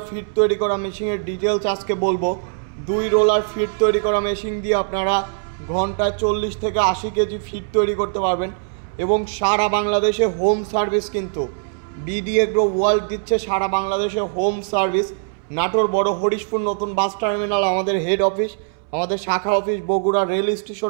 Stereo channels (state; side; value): silent; left; 65 dB below the other